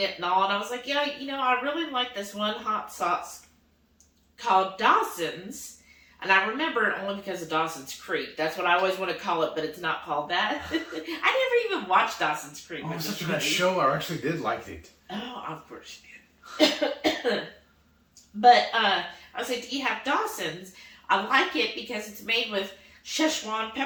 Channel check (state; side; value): identical; both; correlation 1.00